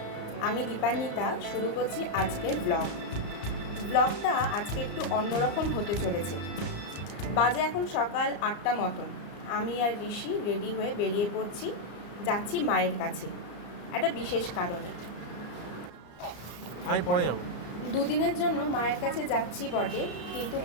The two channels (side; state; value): right; late; 34 ms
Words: আমি দীপান্বিতা শুরু করছি আজকের ব্লগটা আজকে একটু অন্যরকম হতে চলেছে। বাজে এখন সকাল 8টা মতন। আমি আর ঋষি রেডি হয়ে বেরিয়ে পড়ছি, যাচ্ছি মায়ের কাছে একটা বিশেষ কারণে। আমি পরে যাব। দুদিনের জন্য মায়ের কাছে যাচ্ছি বটে, কিন্তু